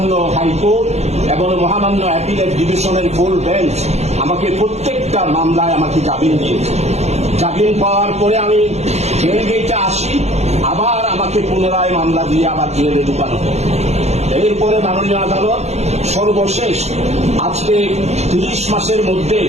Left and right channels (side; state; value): left; late; 0.32 ms